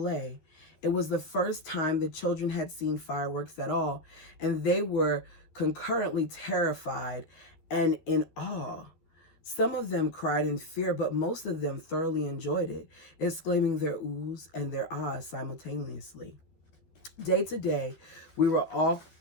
It was the first time the children had seen fireworks at all, and they were concurrently terrified and in awe. Some of them cried in fear, but most of them thoroughly enjoyed it, exclaiming their oohs and their ahs simultaneously. Day to day, we were all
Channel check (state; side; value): late; right; 12 ms